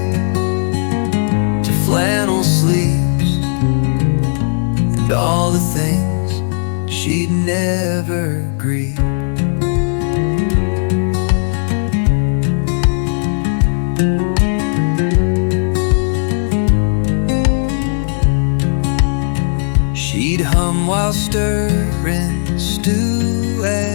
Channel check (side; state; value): right; silent; digital silence